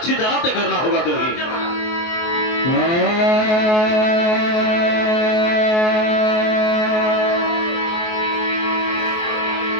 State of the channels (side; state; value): right; late; 23 ms